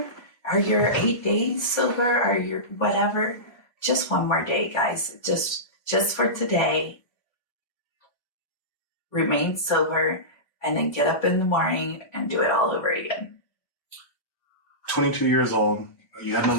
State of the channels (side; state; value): right; late; 1.2 ms